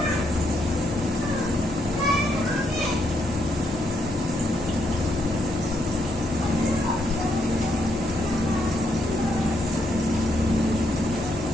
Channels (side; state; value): both; normal; correlation 0.76